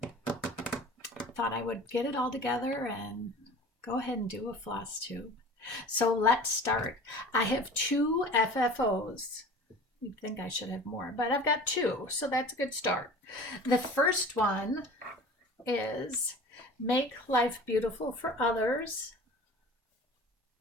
Thought I would get it all together and go ahead and do a floss tube. So let's start. I have two FFOs. You'd think I should have more, but I've got two, so that's a good start. The first one is Make Life Beautiful for Others.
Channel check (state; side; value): normal; both; correlation 0.41